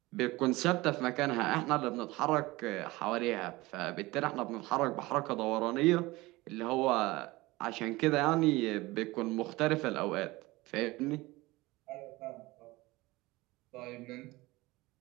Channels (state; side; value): quieter; left; 20.7 dB